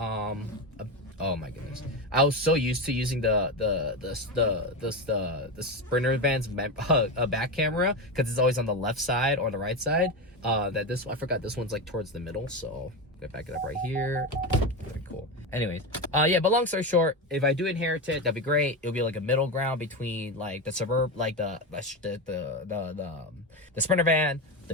oh my goodness! I was so used to using the Sprinter van's back camera because it's always on the left side or the right side. That this I forgot this one's like towards the middle, so I'm gonna back it up right here. Very cool. Anyways, yeah. But long story short, if I do inherit it, that'd be great. It'll be like a middle ground between like the suburb, like the Sprinter van, the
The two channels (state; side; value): normal; both; correlation 0.16